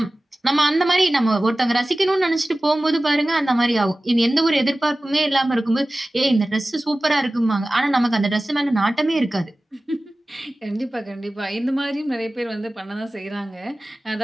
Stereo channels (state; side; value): normal; both; correlation 0.97